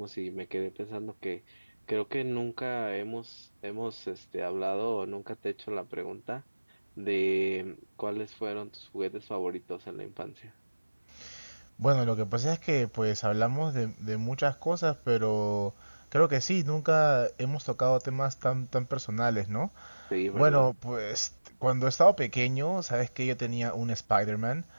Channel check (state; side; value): inverted; both; correlation -1.00